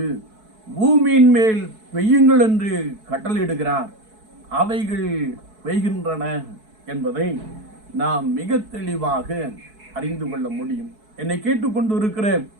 பூமியின் மேல் பெய்யுங்கள் என்று கட்டளையிடுகிறார். அவைகள் பெய்கின்றன என்பதை நாம் மிக தெளிவாக அறிந்து கொள்ள முடியும். என்னை கேட்டுக்கொண்டு இருக்கிற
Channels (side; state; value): left; late; 4.6 ms